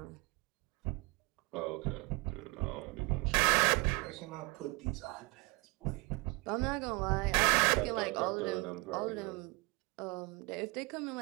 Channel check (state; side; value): quieter; left; 26.3 dB